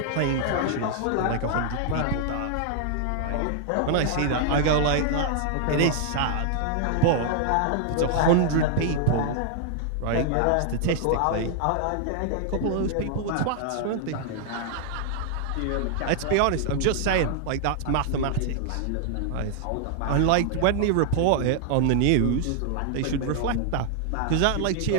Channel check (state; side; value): different; both; correlation 0.00